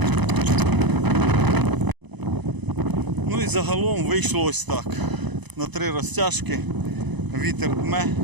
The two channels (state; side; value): late; left; 1.0 ms